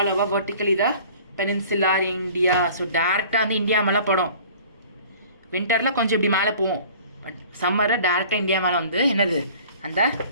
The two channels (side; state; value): both; inverted; correlation -0.47